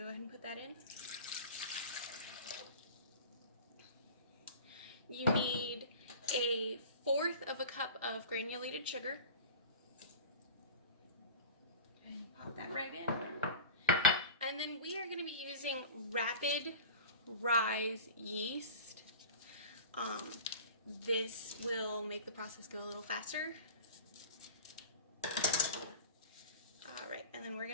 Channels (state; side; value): inverted; both; correlation -0.36